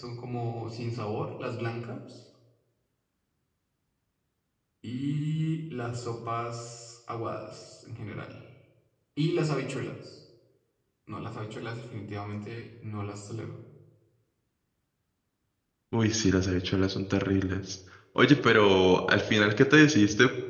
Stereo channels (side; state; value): both; identical; correlation 1.00